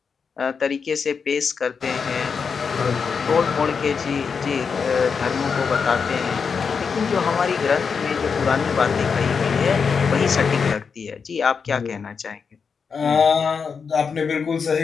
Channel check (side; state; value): right; quieter; 5.8 dB